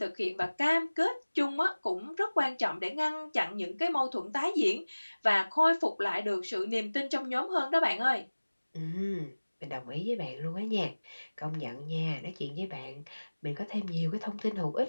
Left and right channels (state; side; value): inverted; both; correlation -1.00